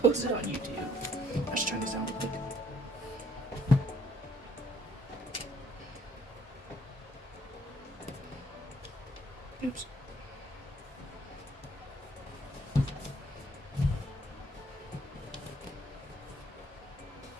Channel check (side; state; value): both; normal; correlation 0.64